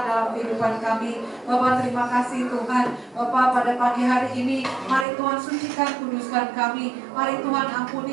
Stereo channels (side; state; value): left; drops out; at 5.1 s